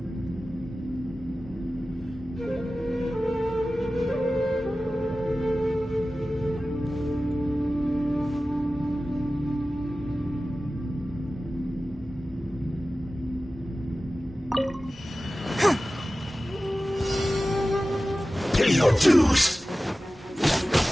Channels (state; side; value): normal; both; correlation 0.96